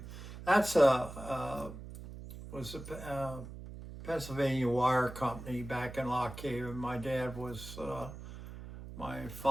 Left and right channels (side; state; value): right; noise; hum, 12 dB below the sound